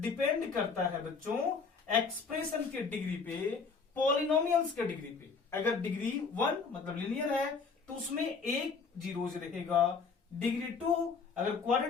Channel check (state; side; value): quieter; right; 5.1 dB